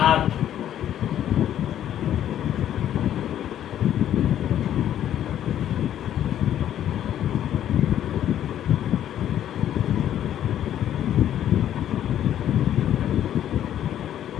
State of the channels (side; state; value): right; quieter; 11.0 dB